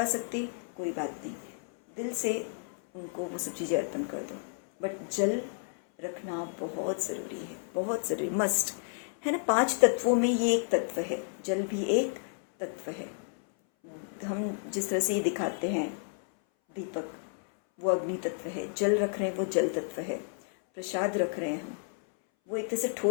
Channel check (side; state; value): right; silent; 57 dB below the other